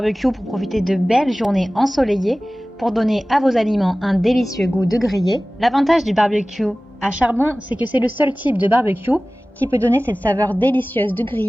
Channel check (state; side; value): normal; both; correlation 0.98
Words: pour profiter de belles journées ensoleillées, pour donner à vos aliments un délicieux goût de grillé. L'avantage du barbecue à charbon, c'est que c'est le seul type de barbecue qui peut donner cette saveur délicieuse de